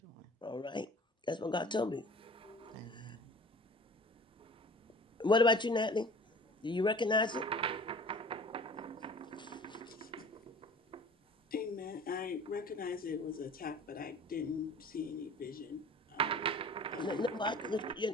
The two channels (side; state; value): both; normal; correlation 0.45